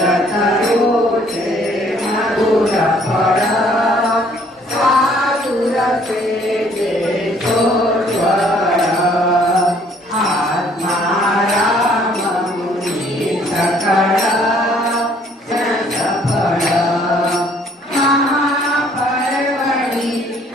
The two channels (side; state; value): both; normal; correlation 0.61